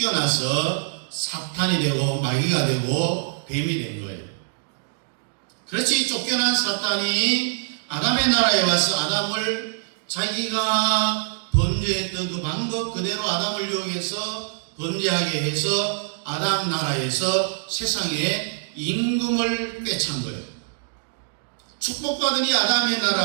사탄이 되고 마귀가 되고 뱀이 된 거예요. 그렇지, 쫓겨난 사탄이 아담의 나라에 와서 아담을 자기가 범죄했던 그 방법 그대로 아담을 이용해서 범죄하게 해서 아담 나라에서 세상에 임금을 꿰찬 거예요. 축복받은 이 아담의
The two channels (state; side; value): silent; left; digital silence